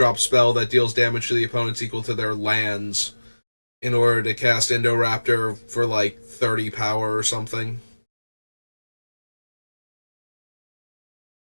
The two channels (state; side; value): inverted; both; correlation -1.00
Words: spell that deals damage to the opponents equal to their lands in order to cast Indoraptor for like 30 power or something.